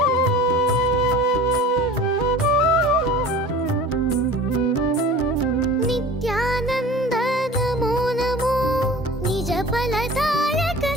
नित्यानंद नमो नमो, निज फलदायक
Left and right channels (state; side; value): normal; both; correlation 0.41